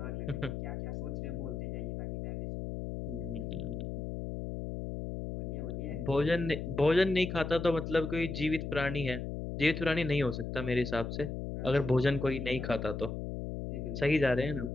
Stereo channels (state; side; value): noise; left; hum, 5 dB below the sound